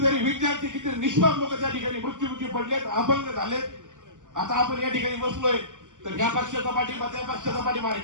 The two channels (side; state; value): left; late; 0.87 ms